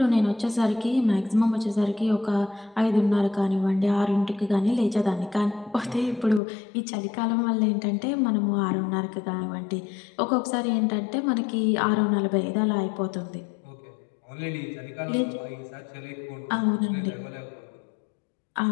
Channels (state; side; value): drops out; right; at 6.4 s